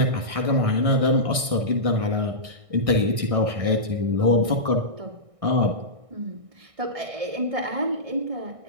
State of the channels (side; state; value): left; late; 1.6 ms